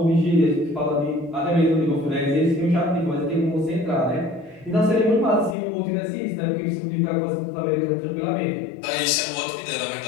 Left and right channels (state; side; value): drops out; right; at 5.6 s